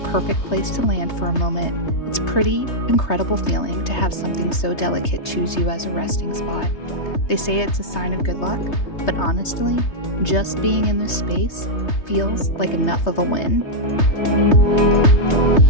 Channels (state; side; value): late; right; 3.2 ms